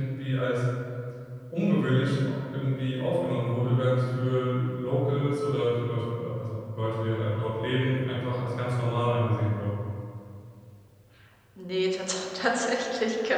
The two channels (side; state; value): both; identical; correlation 1.00